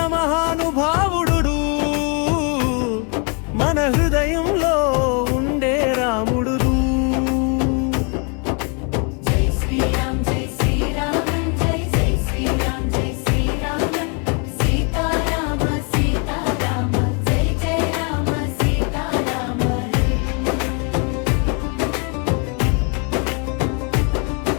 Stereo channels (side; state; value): right; quieter; 35.8 dB